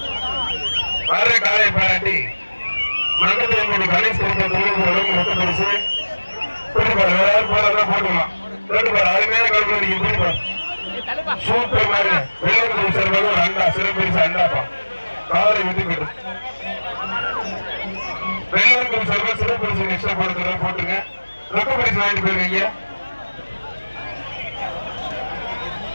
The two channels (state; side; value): inverted; both; correlation -1.00